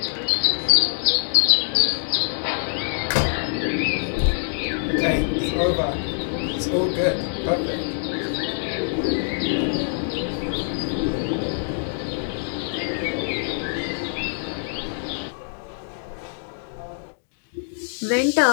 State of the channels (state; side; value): silent; right; digital silence